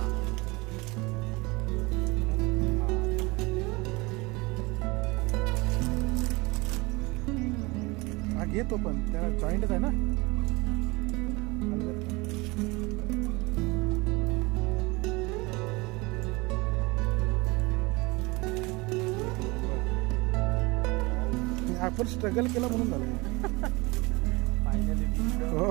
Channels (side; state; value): left; quieter; 24.6 dB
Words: घेतो पण त्याला जॉईंटच आहे ना. आपण स्ट्रगल केला म्हणून झालं.